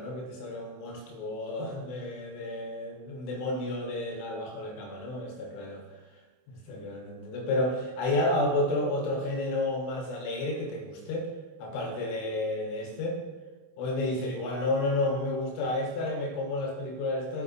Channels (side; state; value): right; late; 24 ms